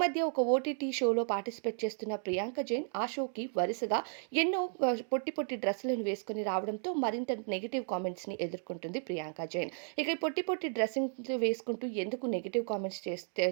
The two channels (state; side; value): silent; left; 55 dB below the other